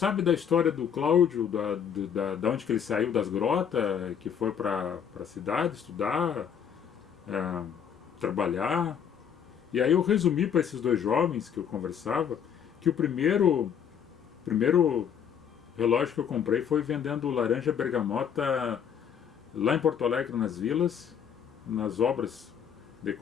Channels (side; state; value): right; quieter; 8.0 dB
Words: da história do Cláudio, da onde que ele saiu das grotas, que foi para a cidade estudar, trabalhar. E aí eu resumi para esses dois jovens que eu conversava que o primeiro relógio que eu comprei foi vendendo laranja bergamota lá em Porto Alegre, nas vilas, nas obras de